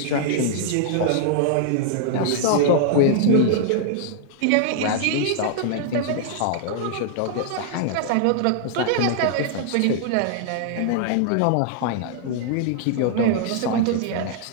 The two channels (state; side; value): different; both; correlation -0.01